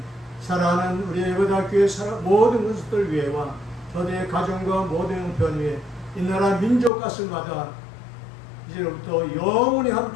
사랑하는 우리 예배대학교의 모든 것들 위해와 저들의 가정과 모든 편 위에 이 나라 민족 가슴마다 이제부터 영원히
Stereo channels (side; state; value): right; drops out; at 6.9 s